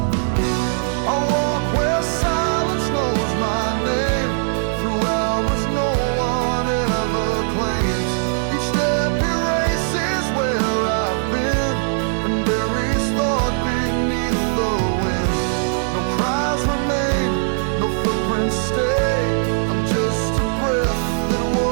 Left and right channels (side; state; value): left; silent; 66 dB below the other